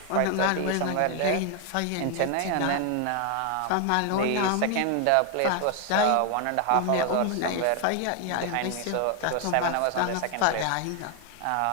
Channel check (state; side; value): different; both; correlation 0.00